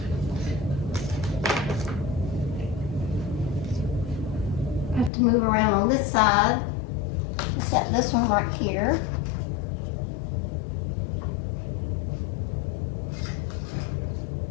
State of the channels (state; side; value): drops out; right; at 5.1 s